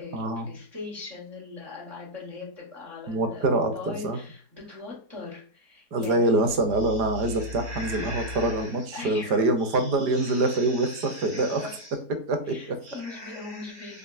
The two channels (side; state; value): left; late; 4.9 ms